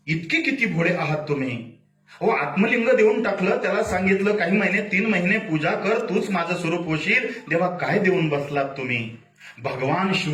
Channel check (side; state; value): both; identical; correlation 1.00